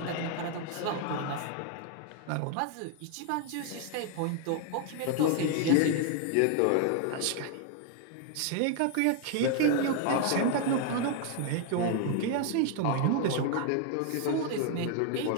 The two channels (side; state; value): both; different; correlation 0.00